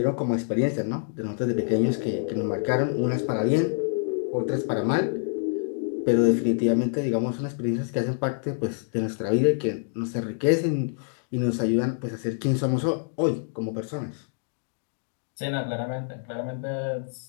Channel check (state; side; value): silent; right; digital silence